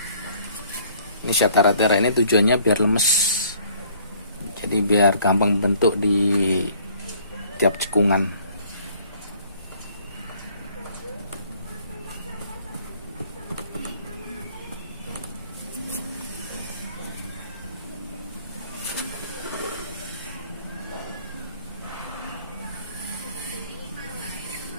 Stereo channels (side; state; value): both; inverted; correlation -0.58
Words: Ini syatara-tara ini tujuannya biar lemes, jadi biar gampang bentuk di tiap cekungan.